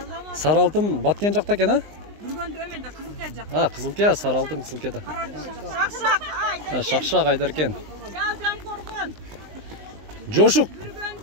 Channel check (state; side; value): late; left; 19 ms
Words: Сары алтын баткен жакта экен, а? Burgunda ömende kızıltaya jak. Кызылтия, сары алтын Кызылтияда. Şakşak. Ay. Шакшак Айдаркен. Jal korgon. Жошук.